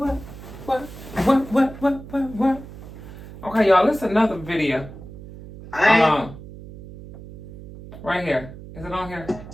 Okay, y'all, this is another video. Right here. Is it on here?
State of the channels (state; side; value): noise; right; hum, 15 dB below the sound